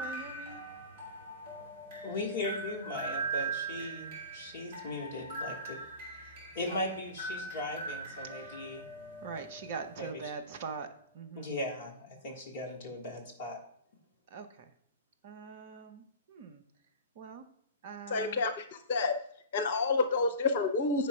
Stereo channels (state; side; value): inverted; both; correlation -0.37